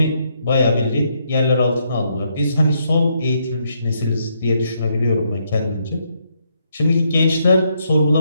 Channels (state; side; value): inverted; both; correlation -0.76